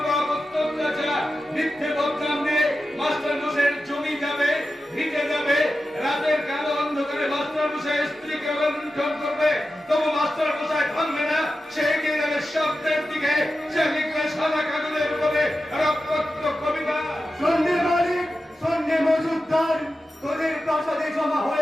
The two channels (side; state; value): both; normal; correlation 0.92